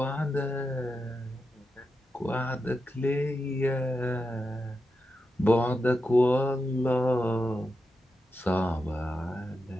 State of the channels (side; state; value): both; normal; correlation 0.88